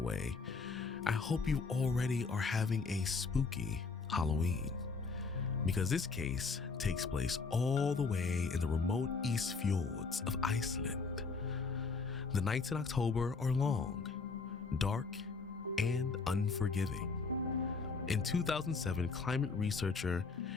way, I hope you already are having a spooky Halloween, because this case takes place all the way in the remote East Fjords of Iceland. The nights in October are long, dark, and unforgiving. In 2007, climate researcher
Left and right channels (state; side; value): quieter; right; 4.5 dB